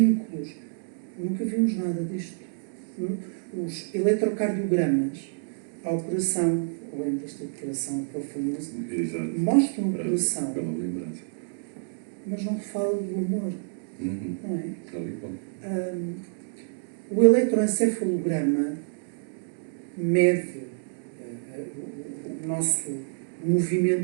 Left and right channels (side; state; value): left; silent; digital silence